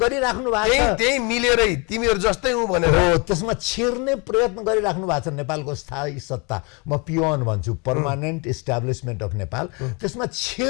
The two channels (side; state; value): right; quieter; 30.7 dB